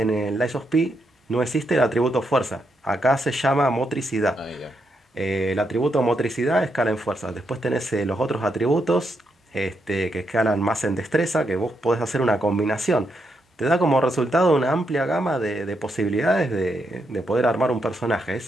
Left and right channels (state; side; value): normal; both; correlation 0.80